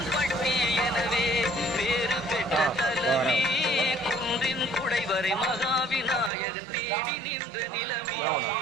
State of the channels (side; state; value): left; drops out; at 6.3 s